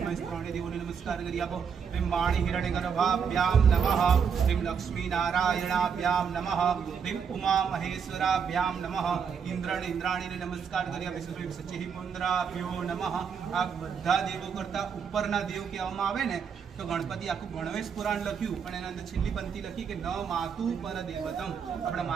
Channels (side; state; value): left; quieter; 6.8 dB